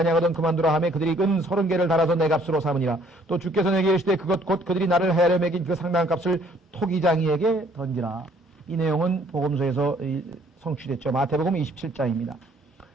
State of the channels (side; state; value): both; normal; correlation 0.61